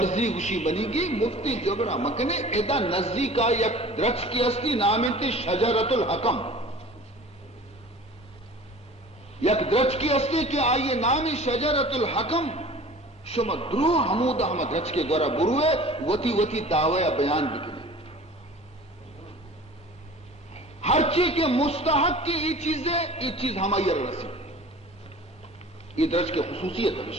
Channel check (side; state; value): both; normal; correlation 0.43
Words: گوشی منی گے مفتی جھگڑا مکنے ایدا نزدی کا یک درچ کی اصلی نام انتی شجرت الحکم یک درچ کی اصلی کہ آئیے نام شجرت الحکم شما درو حمود احمد رچ کے گورا بروے وتی دعوی بیان بکنے ہر چیز کے مستحق کی یہ چیز ہماری رسی یہ درج کے خصوصیت